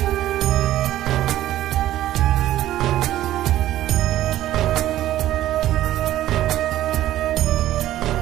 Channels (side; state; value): left; quieter; 13.7 dB